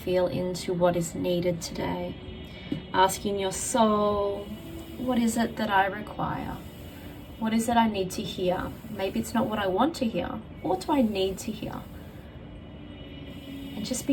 into what is needed today. Asking your soul, what is it that I require? What is it I need to hear? Maybe it's not what I want to hear. What do I need to hear? And just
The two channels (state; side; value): identical; both; correlation 1.00